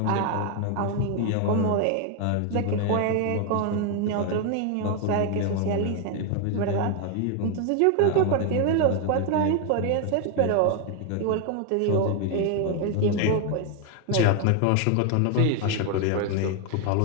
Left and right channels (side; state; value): both; different; correlation 0.01